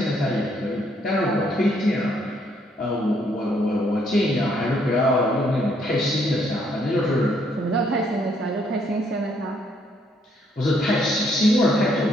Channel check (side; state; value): both; normal; correlation 0.70